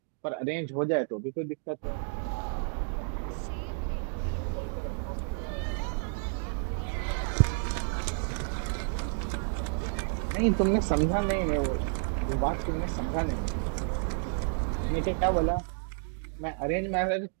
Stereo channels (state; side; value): silent; left; 57 dB below the other